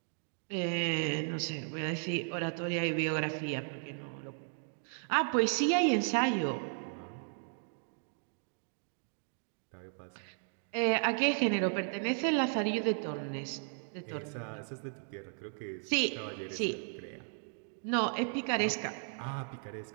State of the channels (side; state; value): left; silent; 54 dB below the other